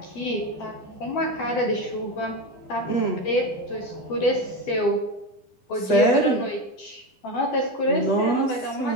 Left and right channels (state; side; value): late; right; 10 ms